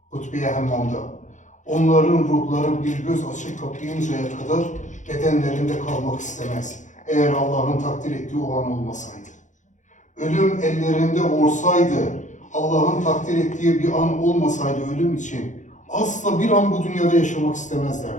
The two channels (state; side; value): late; right; 0.36 ms